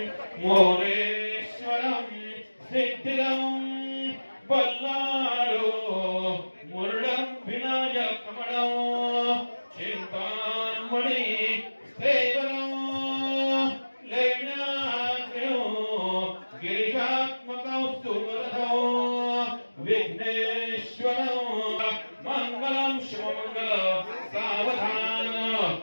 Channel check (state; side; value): inverted; both; correlation -1.00